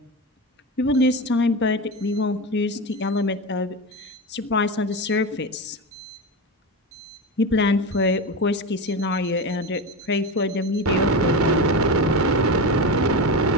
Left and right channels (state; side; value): normal; both; correlation 0.21